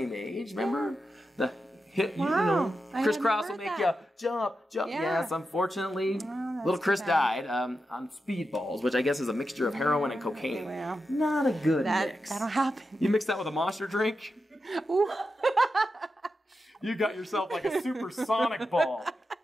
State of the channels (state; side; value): normal; both; correlation 0.89